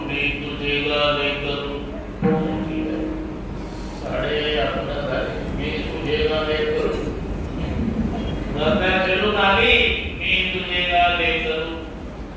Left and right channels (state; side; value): identical; both; correlation 1.00